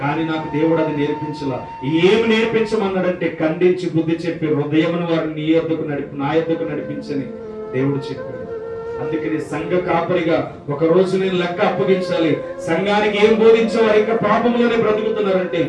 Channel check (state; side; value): identical; both; correlation 1.00